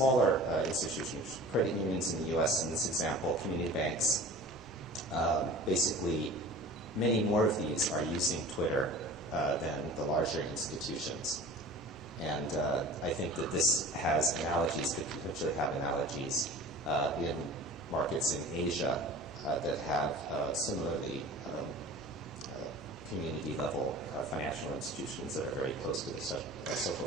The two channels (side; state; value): both; normal; correlation 0.40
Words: institutions, credit unions in the U.S. in this example, community banks, basically many more of these are using Twitter than the larger institutions. And I think that this has analogies, could potentially have analogies in markets in Asia that have similarly community-level financial institutions that are very close to the social